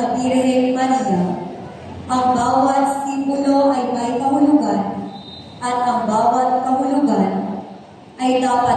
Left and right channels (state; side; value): identical; both; correlation 1.00